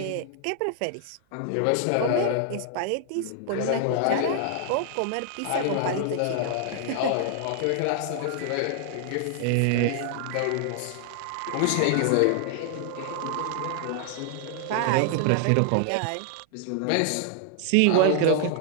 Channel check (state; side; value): different; both; correlation 0.00